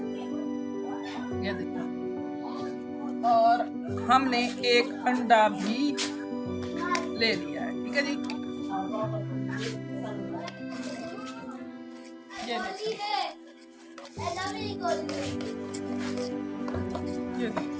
ये देखें, और हमने 1 अंडा भी ले लिया है। ठीक है जी, ये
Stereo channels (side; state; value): both; identical; correlation 1.00